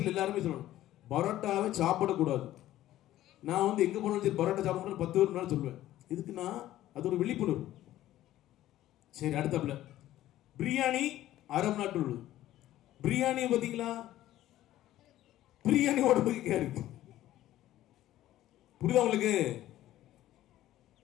எல்லாருமே சொல்லணும், பரோட்டாவை சாப்பிடக்கூடாது. நான் வந்து எங்க போனாலும் சரி பரோட்டா சாப்பிடணும் 10 பேர் முன்னாடி சொல்லுவேன். இதுக்குன்னா அது ஒரு விழிப்புணர்வு. சரி, அடுத்தப்பல பிரியாணி அரபு நாட்டு உள்ளது. பிரியாணி பாத்தீங்களா? பிரியாணி உடம்புக்கு கேடு. புரியுதா உங்களுக்கு?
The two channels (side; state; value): right; quieter; 14.0 dB